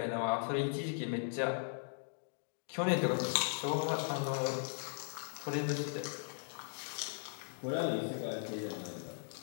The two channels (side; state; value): right; silent; digital silence